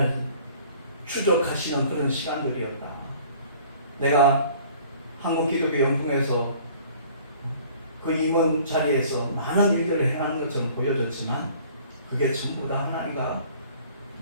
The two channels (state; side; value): inverted; both; correlation -0.52